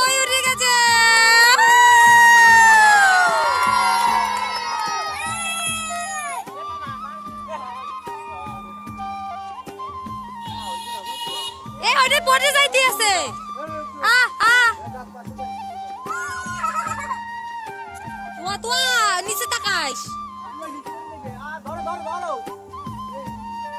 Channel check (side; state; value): both; identical; correlation 1.00